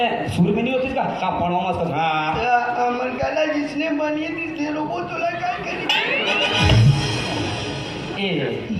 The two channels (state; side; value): identical; both; correlation 1.00